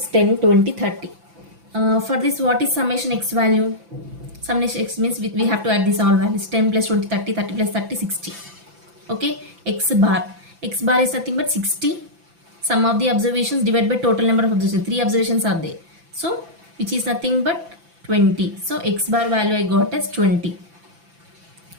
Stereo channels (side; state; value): left; late; 5.9 ms